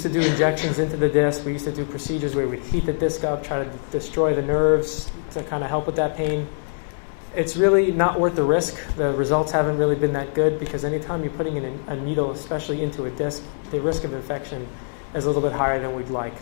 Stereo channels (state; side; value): silent; right; digital silence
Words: to do injections into the disc. We used to do procedures where we'd heat the disc up, try to destroy the nerves to kind of help with that pain. It's really not worth the risk. The results haven't really been that good because anytime you're putting in a needle, especially into a disc, the risk of infection is a little bit higher than we'd like.